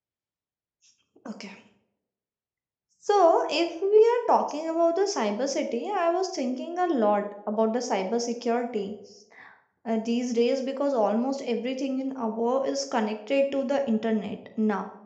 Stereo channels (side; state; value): both; identical; correlation 1.00